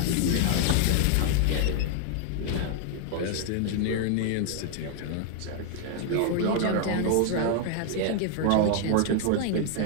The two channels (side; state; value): both; different; correlation 0.00